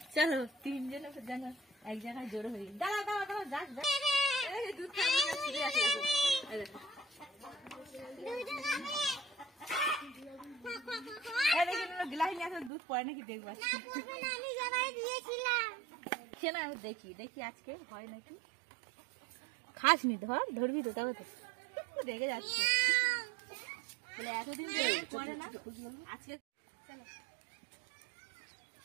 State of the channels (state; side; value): drops out; left; at 12.7 s